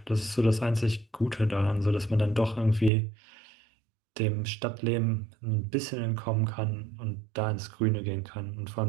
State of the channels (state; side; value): drops out; left; at 2.9 s